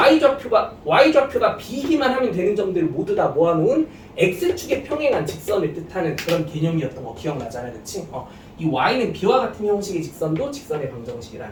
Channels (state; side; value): identical; both; correlation 1.00